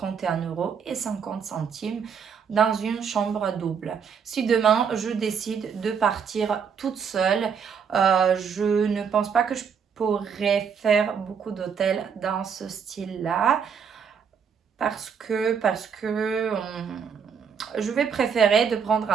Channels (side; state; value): left; quieter; 6.8 dB